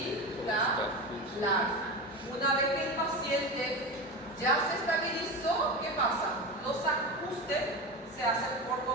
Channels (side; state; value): both; normal; correlation 0.23